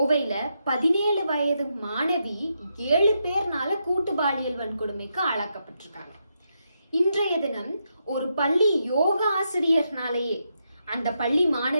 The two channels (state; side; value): inverted; both; correlation -0.82